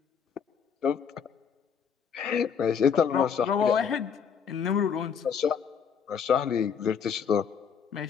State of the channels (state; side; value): quieter; right; 7.0 dB